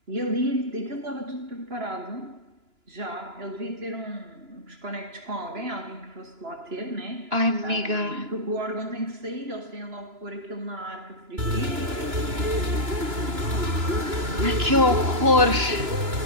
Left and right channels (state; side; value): late; left; 2.9 ms